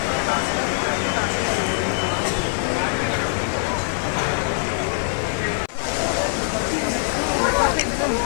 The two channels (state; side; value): silent; right; 56 dB below the other